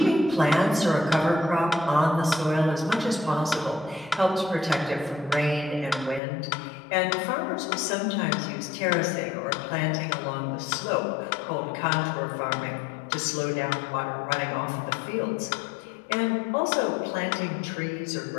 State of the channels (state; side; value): drops out; right; at 6.2 s